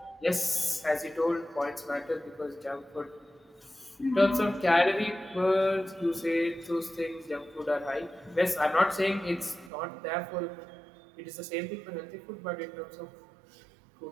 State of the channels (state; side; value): drops out; left; at 9.7 s